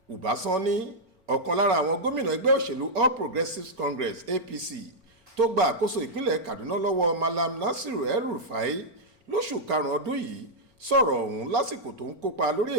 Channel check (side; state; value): left; late; 4.3 ms